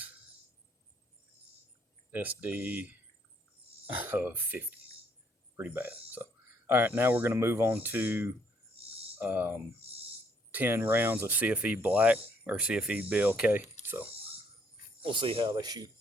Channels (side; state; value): both; normal; correlation 0.68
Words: SD of 50, pretty bad. So, all right, now we're gonna move on to 10 rounds of CFE Black or CFE BLK. So we'll see how they shoot.